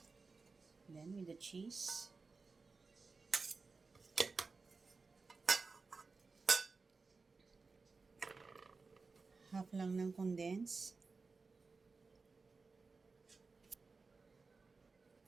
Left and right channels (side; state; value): left; quieter; 4.2 dB